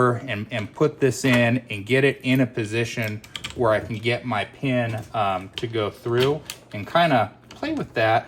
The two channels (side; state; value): both; identical; correlation 1.00